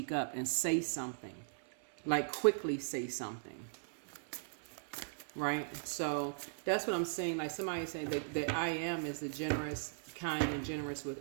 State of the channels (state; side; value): silent; left; 52 dB below the other